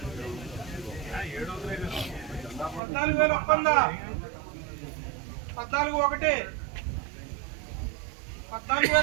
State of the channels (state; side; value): drops out; left; at 2.8 s